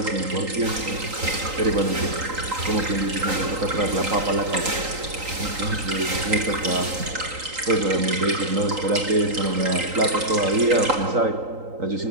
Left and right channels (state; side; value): late; left; 3.9 ms